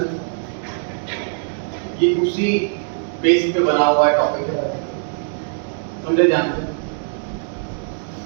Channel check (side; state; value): left; silent; digital silence